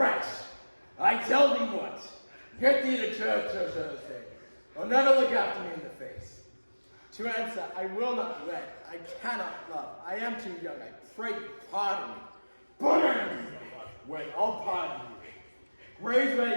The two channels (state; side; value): inverted; both; correlation -1.00